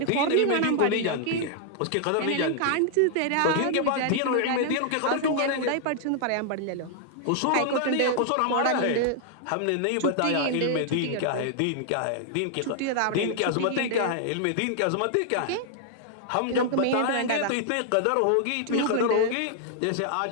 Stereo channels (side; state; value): both; different; correlation 0.00